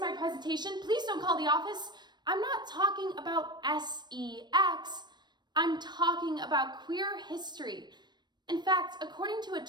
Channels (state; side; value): late; left; 0.21 ms